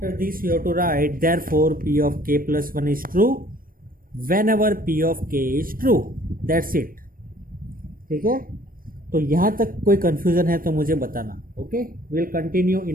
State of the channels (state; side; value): late; left; 0.41 ms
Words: this you have to write therefore P of k plus 1 is true whenever P of k is true. That's it. ठीक है. तो यहाँ तक कोई कंफ्यूजन है तो मुझे बताना. Okay. Will continue